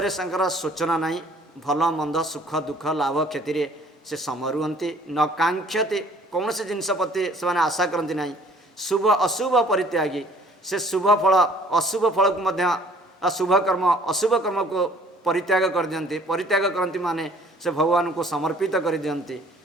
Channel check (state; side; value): normal; both; correlation 0.56